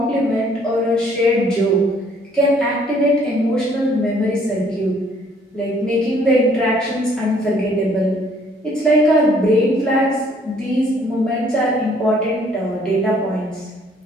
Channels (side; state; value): both; normal; correlation 0.62